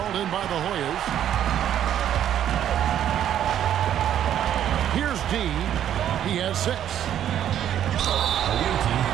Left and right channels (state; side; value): quieter; left; 10.5 dB